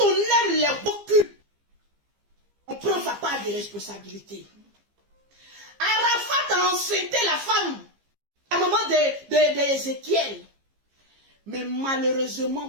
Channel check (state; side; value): late; left; 15 ms